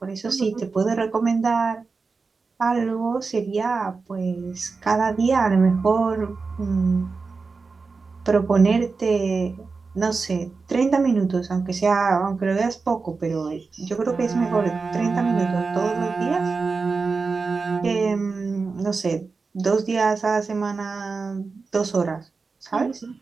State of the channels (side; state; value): left; quieter; 4.4 dB